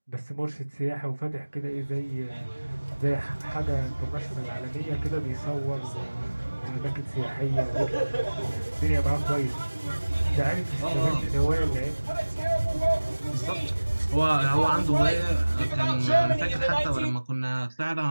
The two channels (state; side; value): inverted; both; correlation -1.00